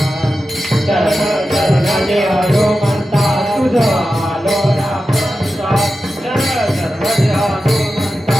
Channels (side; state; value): both; normal; correlation 0.92